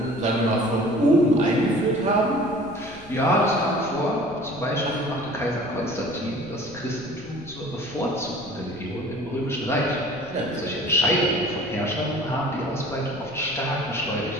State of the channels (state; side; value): noise; left; rumble, 21 dB below the sound